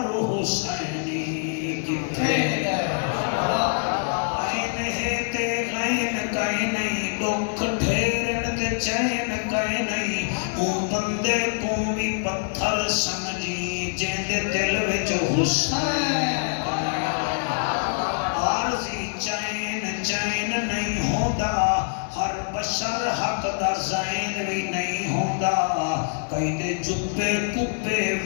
حسینی کتھے گئے، عین ہے تے غین کہیں نہیں، دکھ ڈھیرن تے چین کہیں نہیں، اون بندے کو بھی پتھر سمجھی جن دے دل وچ حسین عارضی چین چین نہیں ہوندا، ہر بشر حق دا زین بھی نہیں ہوندا، کئی دے جبے کبے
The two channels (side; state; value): right; silent; digital silence